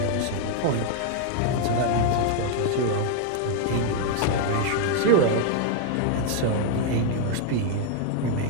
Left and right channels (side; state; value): both; different; correlation 0.00